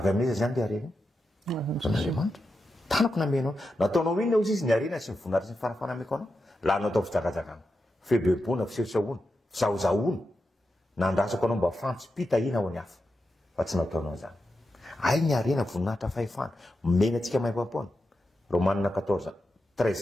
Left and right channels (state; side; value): normal; both; correlation 0.88